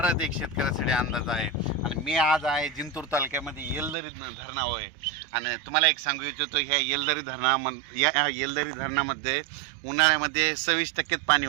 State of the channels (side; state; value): left; drops out; at 4.0 s